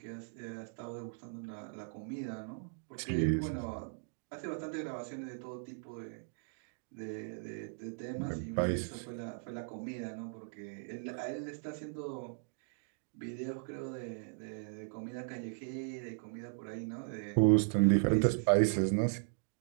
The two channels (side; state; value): left; silent; digital silence